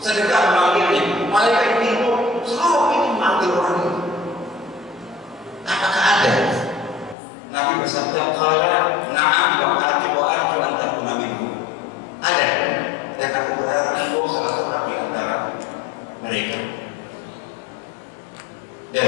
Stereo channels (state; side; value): drops out; right; at 7.2 s